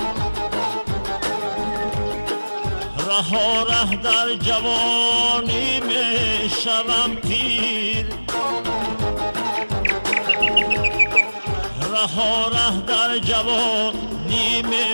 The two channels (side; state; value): both; inverted; correlation -1.00